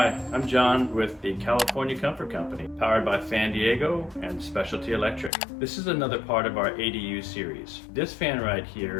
I'm John with the California Comfort Company, powered by Fan Diego and Specialty Electric. This is another part of our ADU series. This fan right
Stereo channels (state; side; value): drops out; right; at 5.3 s